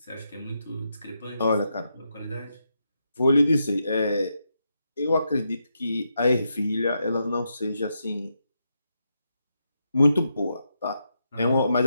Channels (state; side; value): inverted; both; correlation -0.83